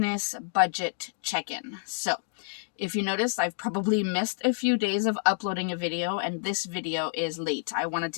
budget check-in. So, if you notice, I've probably missed a few days of uploading a video and this video is late. I wanted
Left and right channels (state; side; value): silent; right; digital silence